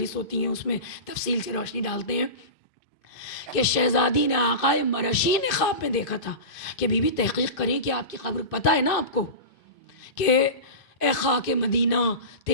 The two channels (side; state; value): right; late; 2.5 ms